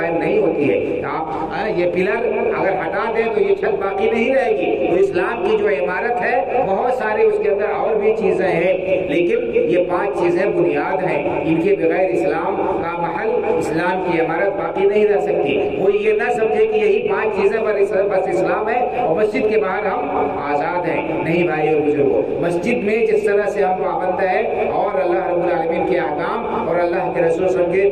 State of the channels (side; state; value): left; noise; hum, 23 dB below the sound